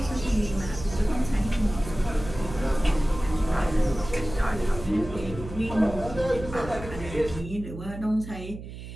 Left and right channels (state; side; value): noise; right; hum, 11 dB below the sound